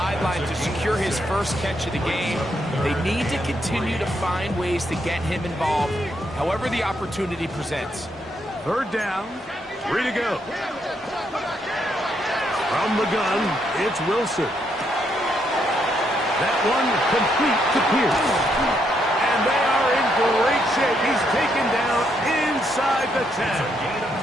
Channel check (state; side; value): normal; both; correlation 0.76